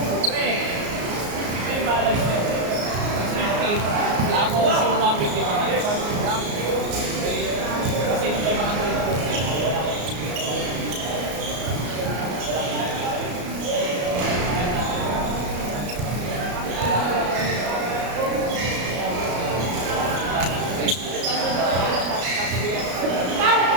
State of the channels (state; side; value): late; left; 34 ms